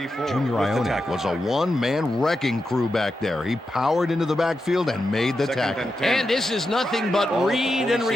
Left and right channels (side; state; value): both; normal; correlation 0.88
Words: Junior Ionic was a one-man wrecking crew back there. He powered into the backfield and made the tackle. And this is nothing but read and